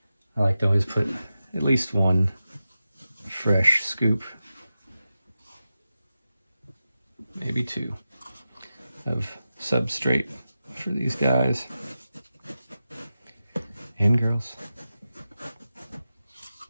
I like to always put at least one fresh scoop, maybe two, of substrate for these guys and girls.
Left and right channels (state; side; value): inverted; both; correlation -0.91